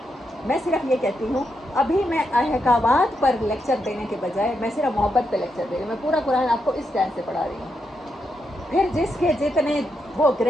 میں صرف یہ کہتی ہوں, ابھی میں احکامات پر لیکچر دینے کے بجائے میں صرف محبت پہ لیکچر دے رہی ہوں. میں پورا قرآن آپ کو اس ٹائم سے پڑھا رہی ہوں. پھر جس کے جتنے وہ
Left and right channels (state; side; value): normal; both; correlation 0.82